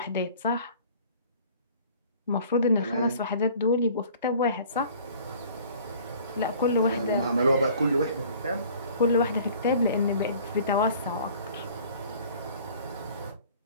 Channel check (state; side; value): inverted; both; correlation -0.50